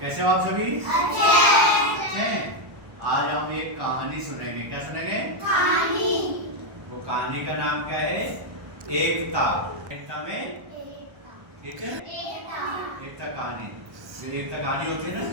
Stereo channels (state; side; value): late; left; 1.1 ms